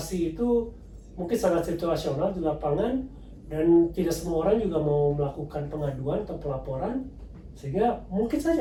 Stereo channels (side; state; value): both; identical; correlation 1.00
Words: itu mungkin sangat situasional di lapangan dan tidak semua orang juga mau melakukan pengaduan atau pelaporan, sehingga mungkin